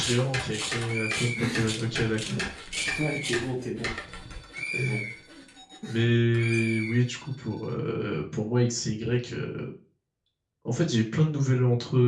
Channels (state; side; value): identical; both; correlation 1.00